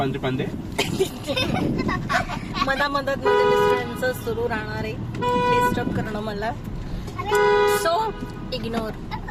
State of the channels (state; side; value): identical; both; correlation 1.00